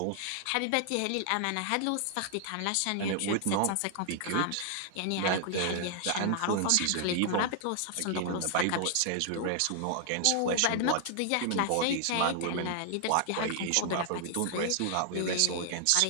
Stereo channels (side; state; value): both; different; correlation 0.00